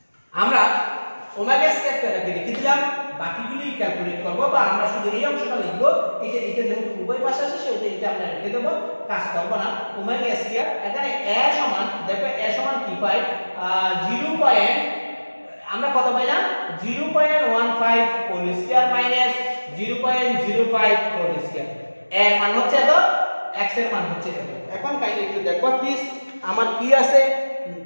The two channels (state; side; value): inverted; both; correlation -1.00